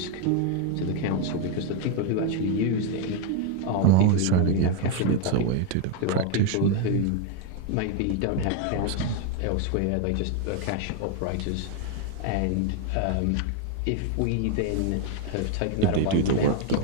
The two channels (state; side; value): different; both; correlation 0.01